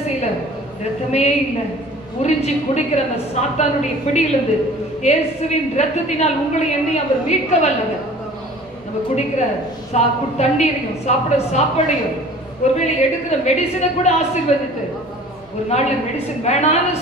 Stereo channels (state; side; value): noise; left; hum, 29 dB below the sound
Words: செய்யல, ரத்தமே இல்லை. உறிஞ்சி குடிக்கிற அந்த சாத்தானுடைய பிடியிலிருந்து இயேசுவின் ரத்தத்தினால் உங்களை என்னை அவர் மீட்க வல்லவர். நம்ம குடிக்கிற தண்ணீரையும் சாப்பிட சாப்பாடையும் ஒருவேளை எடுக்கிற மெடிசினை கூட ஆசீர்வதித்து ஒரு நாள்ல மெடிசின் வேணான்னு